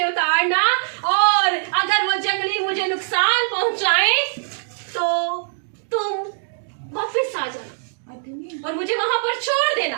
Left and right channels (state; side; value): silent; left; digital silence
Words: उतारना, और अगर वो जंगली मुझे नुकसान पहुंचाए तो तुम वापस आ जाना और मुझे वहां पर छोड़ देना।